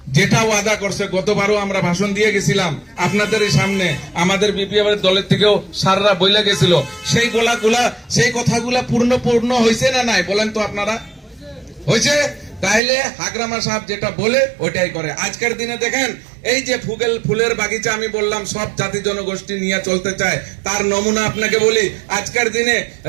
যেটা ওয়াদা করছে, গতবারও আমরা ভাষণ দিয়ে গেছিলাম আপনাদের সামনে, আমাদের বিপিএফ এর দলের থেকেও সাররা বইলা গেছিল, সেই সেই কথাগুলা পূর্ণ হয়েছে না নাই বলেন তো আপনারা? হয়েছে? তাইলে হাগ্রামা সাহেব যেটা বলে ওইটাই করে। আজকের দিনে দেখেন, এই যে ফুলের বাগিচা আমি বললাম সব জাতি জনগোষ্ঠী নিয়ে চলতে চায়, তার নমুনা আপনাকে বলি। আজকের দিনে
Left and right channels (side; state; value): left; drops out; at 12.8 s